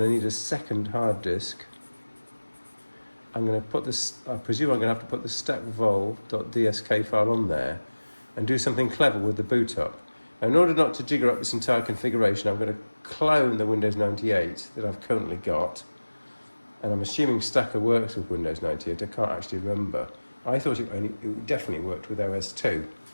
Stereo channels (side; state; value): both; inverted; correlation -1.00